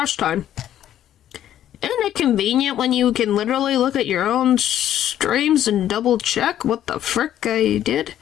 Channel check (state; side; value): quieter; right; 11.4 dB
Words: time? Isn't it convenient when you can literally look at your own streams and double check what the frick I did?